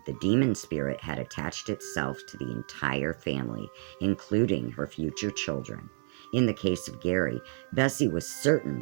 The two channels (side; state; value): left; silent; digital silence